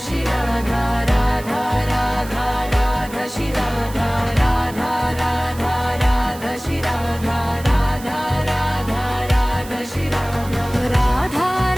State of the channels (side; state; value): right; noise; hiss, 17 dB below the sound